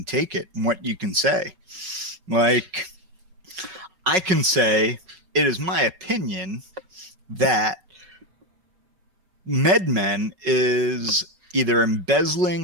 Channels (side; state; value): left; late; 5.4 ms